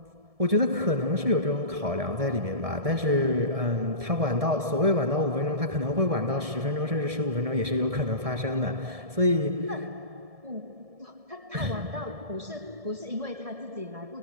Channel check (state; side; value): late; left; 1.7 ms